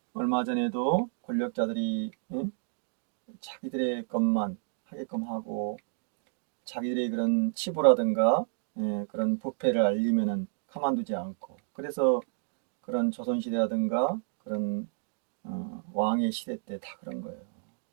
얼마 전에도 권력자들이 예? 자기들의 것만 하게끔 하고 자기들의 그런 치부라든가 예, 그런 부패를 알리면은 가만두지 않고 그래서 그런 조선시대라든가 그런 왕의 시대 때 다 그런 거예요.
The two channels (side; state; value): left; silent; digital silence